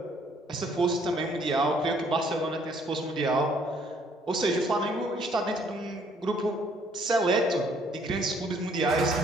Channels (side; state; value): both; normal; correlation 0.63